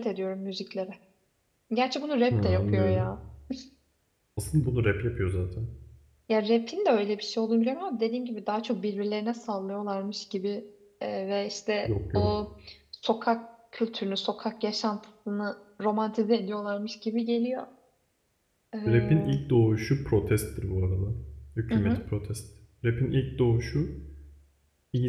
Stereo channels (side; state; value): both; identical; correlation 1.00